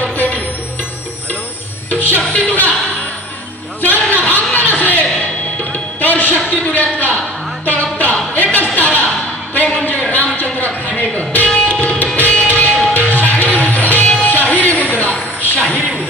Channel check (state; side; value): normal; both; correlation 0.44